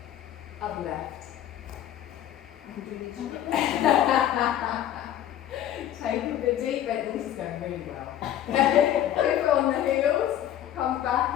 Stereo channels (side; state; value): right; quieter; 11.5 dB